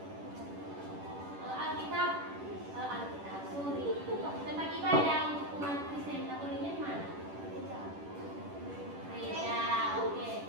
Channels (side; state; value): left; late; 10 ms